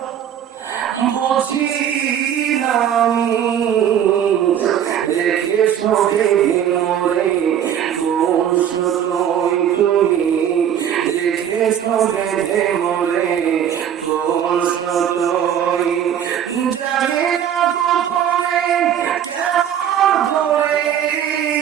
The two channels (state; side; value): quieter; left; 9.5 dB